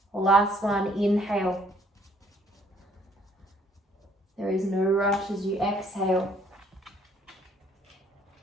Last one, inhale. There is no rush as you exhale.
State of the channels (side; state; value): both; normal; correlation 0.62